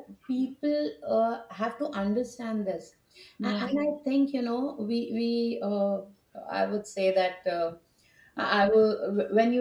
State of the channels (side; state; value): both; identical; correlation 1.00